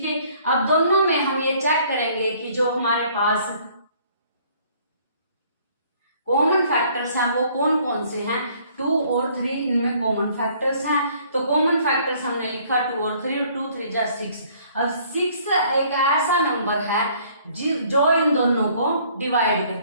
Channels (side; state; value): both; inverted; correlation -0.59